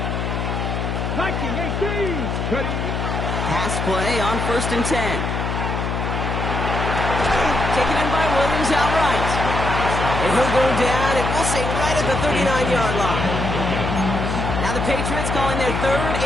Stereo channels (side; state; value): left; noise; hum, 2 dB below the sound